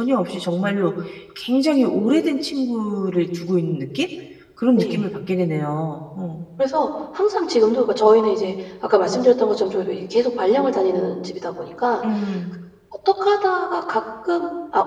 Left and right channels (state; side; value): identical; both; correlation 1.00